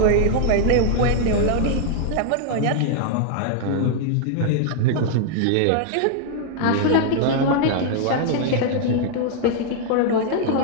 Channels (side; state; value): both; different; correlation -0.01